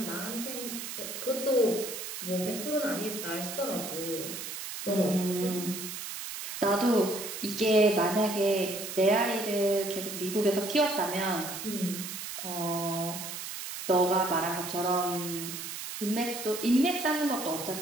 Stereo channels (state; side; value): noise; right; hiss, 7 dB below the sound